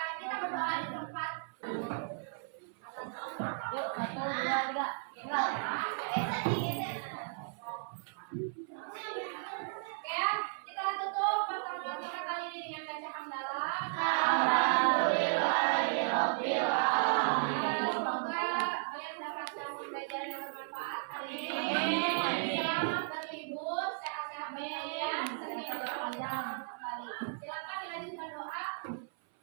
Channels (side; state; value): left; silent; 54 dB below the other